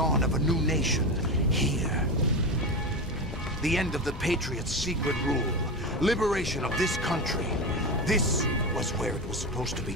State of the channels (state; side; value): normal; both; correlation 0.20